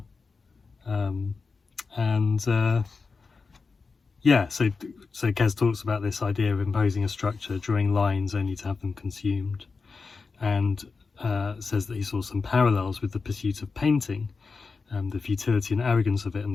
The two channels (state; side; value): quieter; right; 4.5 dB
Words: Yeah, so Kes talks about this idea of imposing a structure, drawing lines only to have them consumed, and says that he saw some parallels with the pursuit of painting, the futility and arrogance of it, and